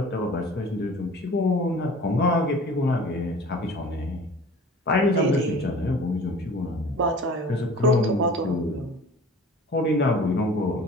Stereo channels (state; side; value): normal; both; correlation 0.44